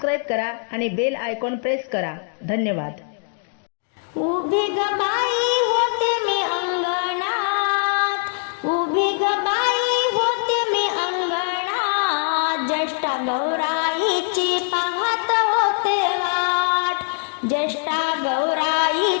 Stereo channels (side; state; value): right; silent; 63 dB below the other